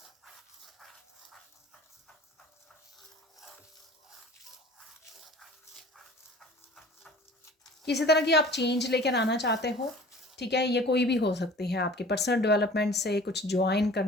किसी तरह की आप चेंज लेकर आना चाहते हो, ठीक है, ये कोई भी हो सकती है, आपके पर्सनल डेवलपमेंट से कुछ ज्वाइन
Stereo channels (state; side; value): normal; both; correlation 0.45